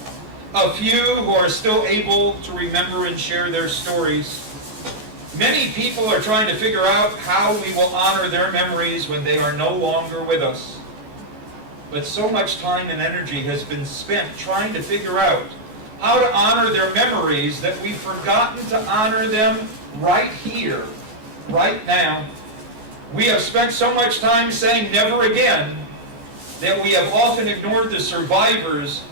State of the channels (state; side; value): late; left; 14 ms